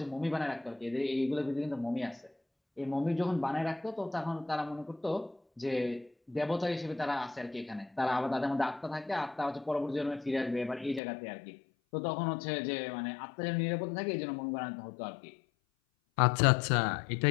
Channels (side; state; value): right; drops out; at 11.0 s